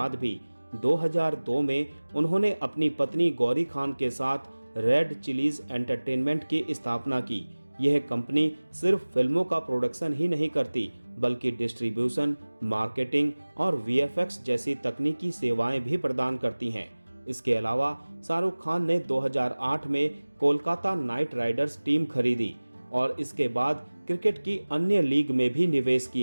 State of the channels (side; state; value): both; inverted; correlation -1.00